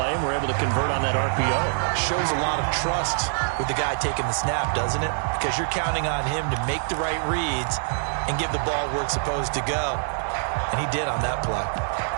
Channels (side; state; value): left; silent; 62 dB below the other